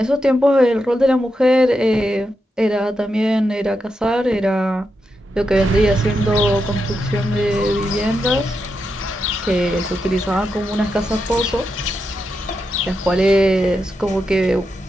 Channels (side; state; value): both; normal; correlation 0.86